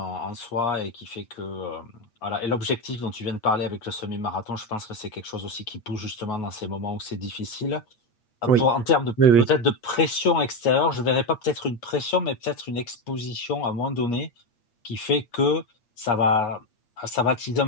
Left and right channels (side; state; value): right; late; 8.5 ms